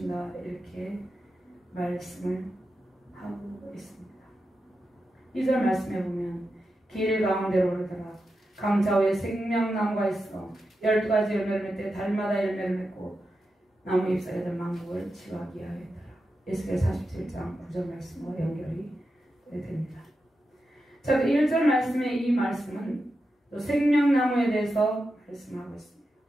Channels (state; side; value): normal; both; correlation 0.89